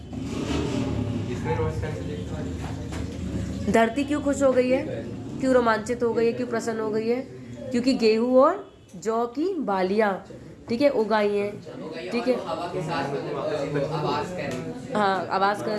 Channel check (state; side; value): identical; both; correlation 1.00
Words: धरती क्यों खुश हो गई है, क्यों रोमांचित हो गई है, क्यों प्रसन्न हो गई है, क्योंकि गेहूं और जौ की बालियां, ठीक है, उगाई हैं। ठीक है, हाँ आवाज कर